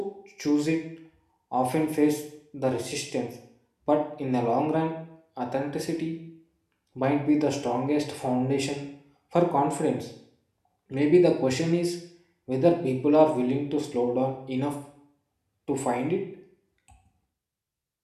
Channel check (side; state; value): both; identical; correlation 1.00